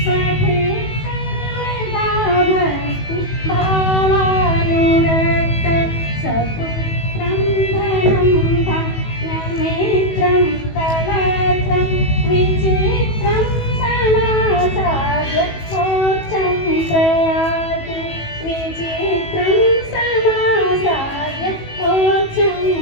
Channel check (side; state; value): right; late; 18 ms